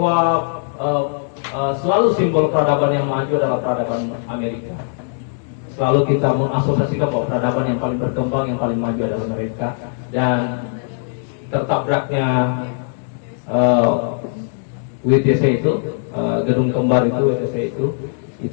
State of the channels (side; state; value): right; silent; digital silence